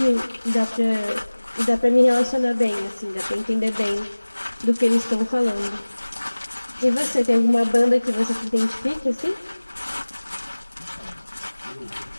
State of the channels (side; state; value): both; inverted; correlation -1.00